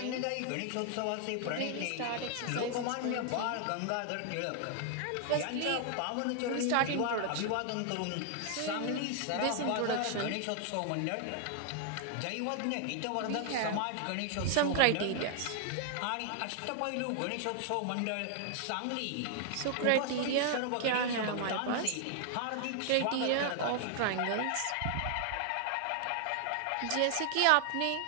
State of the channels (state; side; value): different; both; correlation 0.00